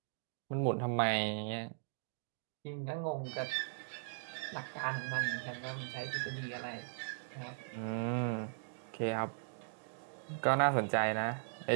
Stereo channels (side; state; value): left; silent; digital silence